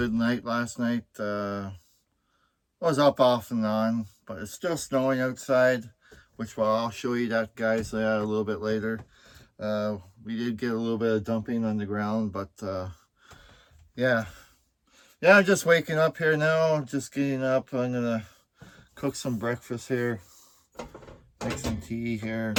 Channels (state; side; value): identical; both; correlation 1.00